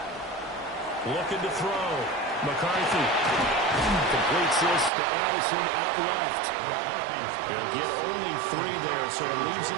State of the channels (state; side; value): drops out; left; at 4.9 s